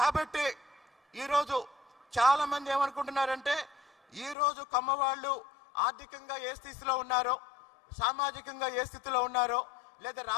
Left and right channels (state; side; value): drops out; right; at 4.4 s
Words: ఈరోజు చాలా మంది ఏమనుకుంటున్నారంటే ఈరోజు కమ్మ వాళ్ళు ఆర్థికంగా ఏ స్థితిలో ఉన్నారో, సామాజికంగా ఏ స్థితిలో ఉన్నారో, లేదా